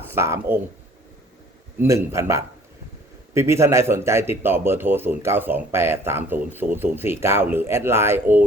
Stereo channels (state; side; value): normal; both; correlation 0.54